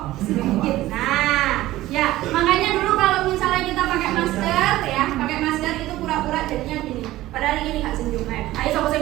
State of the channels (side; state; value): left; quieter; 16.2 dB